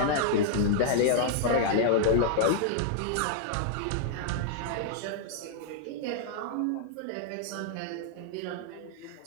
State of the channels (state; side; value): different; both; correlation -0.01